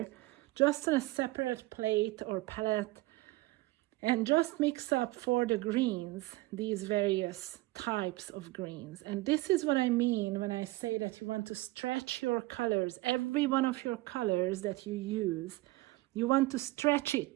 just on a separate plate or palette, and just mix up for the greens these various types of greens. And this is what I mean when I say that you want to stretch your colors. Every one of your colors that you use, you want to stretch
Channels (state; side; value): quieter; left; 19.9 dB